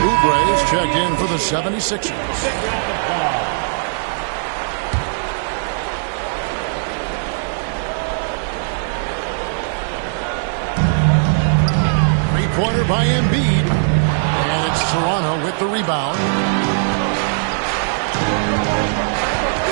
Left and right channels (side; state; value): left; silent; digital silence